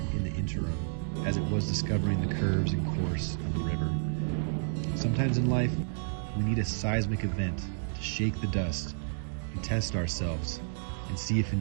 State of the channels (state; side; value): silent; left; digital silence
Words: in the interim as it was discovering the curves and course of the river. Sometimes in life, we need a seismic event to shake the dust and test ourselves and see if